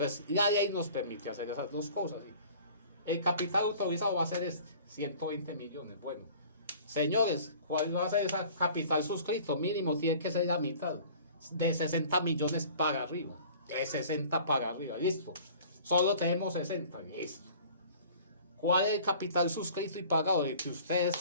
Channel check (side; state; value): both; inverted; correlation -0.47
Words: la ley nos permite hacer esas dos cosas, ¿sí? El capital autorizado va a ser 120 millones, bueno. Señores, ¿cuál va a ser ese capital suscrito? Mínimo tiene que ser la mitad, de 60 millones para arriba, de 60 para arriba, listo. Solo tenemos 60, listo. ¿Cuál es el capital suscrito y pagado? El que